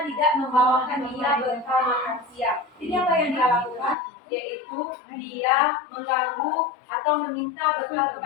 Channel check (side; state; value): right; drops out; at 4.0 s